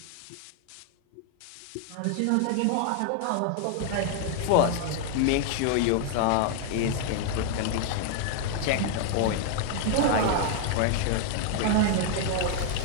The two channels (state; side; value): different; both; correlation 0.00